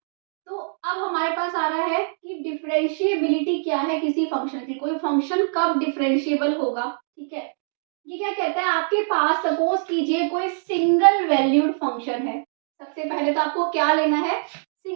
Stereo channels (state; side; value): silent; left; digital silence